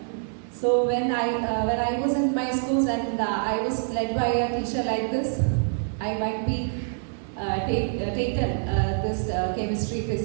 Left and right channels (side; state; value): left; silent; 59 dB below the other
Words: So when I was in my schools and I was led by a teacher like this, I might be taken this chemistry,